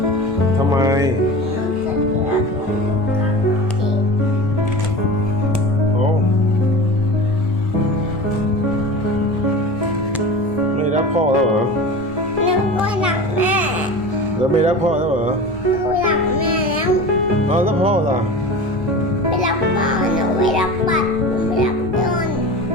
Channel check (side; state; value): both; normal; correlation 0.33